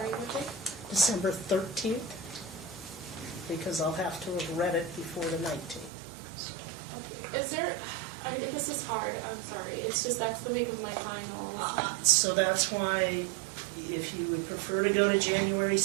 what day? December 13th, because I'll have to have read it before the 19th. So. Okay. Is there, this is hard, I'm sorry. It's just that's the week of my finals. So that's why, if you would prefer to go to January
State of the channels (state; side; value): drops out; left; at 5.9 s